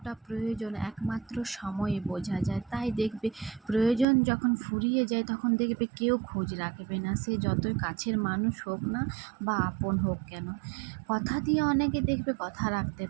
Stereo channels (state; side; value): drops out; left; at 4.0 s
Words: প্রয়োজন একমাত্র সময়ে বোঝা যায়। তাই দেখবে প্রয়োজন যখন ফুরিয়ে যায় তখন দেখবে কেউ খোঁজ রাখবে না, সে যতই কাছের মানুষ হোক না বা আপন হোক কেন। কথা দিয়ে অনেকে দেখবে কথা রাখতে